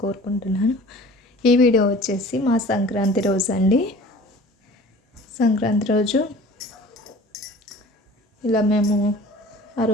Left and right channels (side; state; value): both; normal; correlation 0.45